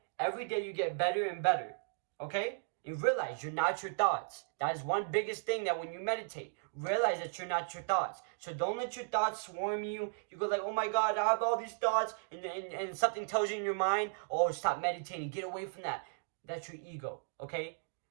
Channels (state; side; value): silent; left; digital silence